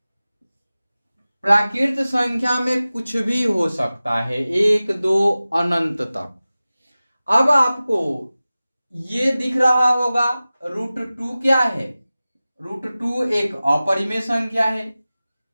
प्राकृत संख्या में कुछ भी हो सकता है, 1 2 अनंत तक। अब आपको ये दिख रहा होगा √2 क्या है? √2 एक अपरिमेय संख्या है,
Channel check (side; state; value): both; inverted; correlation -0.97